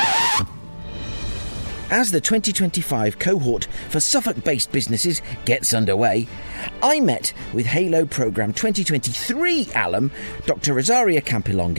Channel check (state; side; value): inverted; both; correlation -1.00